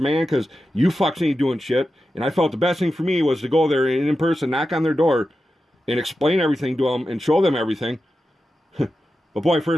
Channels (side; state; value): both; normal; correlation 0.91